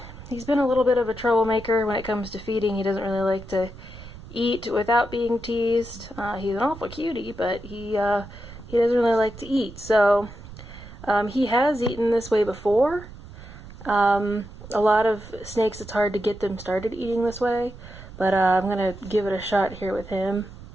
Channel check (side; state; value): right; noise; rumble, 16 dB below the sound